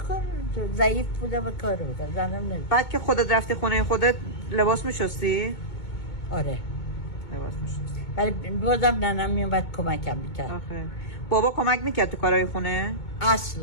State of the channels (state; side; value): late; right; 2.2 ms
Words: کار ضعیف بودم و کار بودم زنم نمی. بعد که خودت رفتی خونه خودت لباس میشستی؟ آره. لباس میشستی. ولی بازم ننم میومد کمکم میکرد. آخه بابا کمک میکرد تو کارهای خونه؟